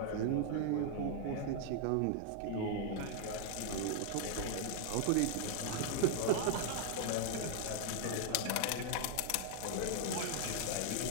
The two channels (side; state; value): both; different; correlation 0.00